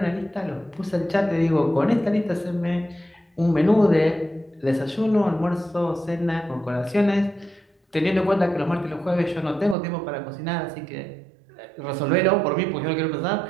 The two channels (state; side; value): drops out; left; at 9.8 s